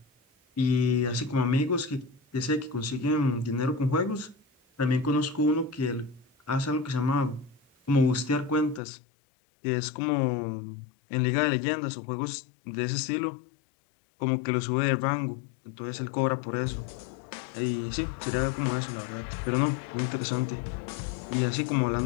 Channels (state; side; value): drops out; right; at 8.8 s